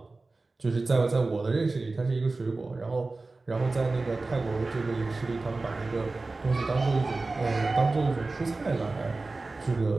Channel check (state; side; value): quieter; left; 3.5 dB